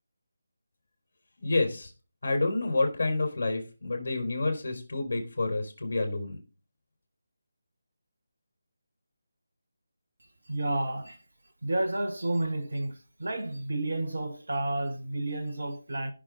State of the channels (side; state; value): both; inverted; correlation -0.93